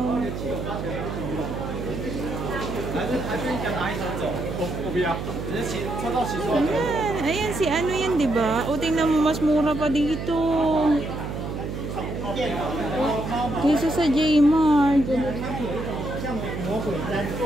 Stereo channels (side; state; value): right; noise; hum, 5 dB below the sound